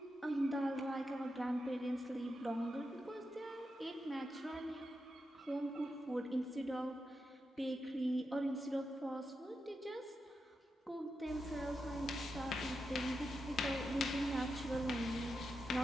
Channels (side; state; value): both; normal; correlation 0.88